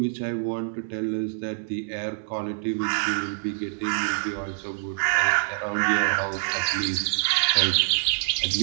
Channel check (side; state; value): left; silent; digital silence